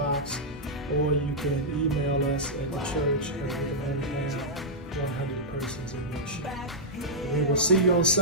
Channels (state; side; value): normal; both; correlation -0.09